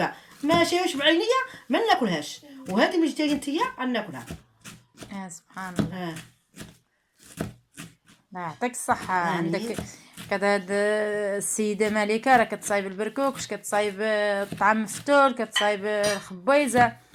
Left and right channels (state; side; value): identical; both; correlation 1.00